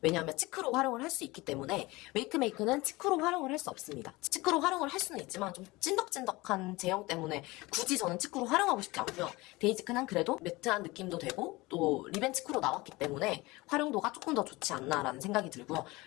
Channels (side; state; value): right; quieter; 21.7 dB